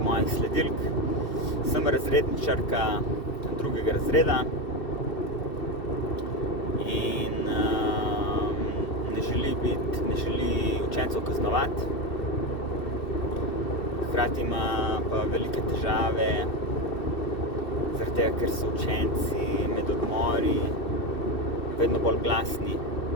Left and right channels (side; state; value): right; late; 2.7 ms